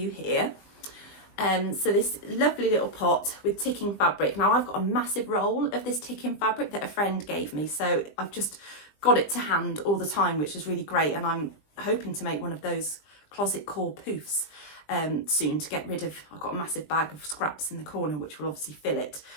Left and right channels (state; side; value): late; right; 20 ms